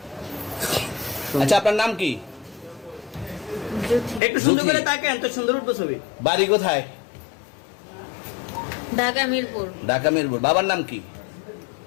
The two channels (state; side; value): drops out; right; at 4.2 s